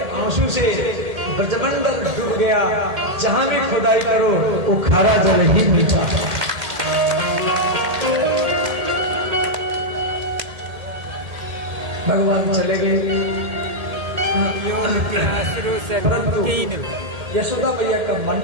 आंसू से ब्रजमंडल डूब गया। जहां भी खुदाई करो वो खारा जल ही मिलता। भगवान चले गए, परंतु यशोदा मैया का मन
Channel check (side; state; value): left; late; 1.7 ms